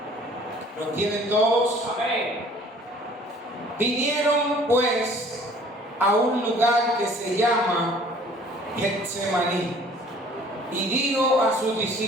¿Lo tienen todos? Amén. Vinieron pues a un lugar que se llama Getsemaní y dijo a sus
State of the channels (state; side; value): normal; both; correlation 0.53